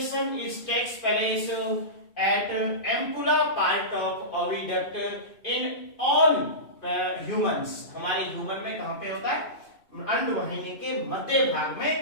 is takes place at ampulla part of oviduct in all humans. हमारे ह्यूमन में कहां पे होता है? अंड वाहिनी के मध्य भाग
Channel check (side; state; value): right; late; 2.5 ms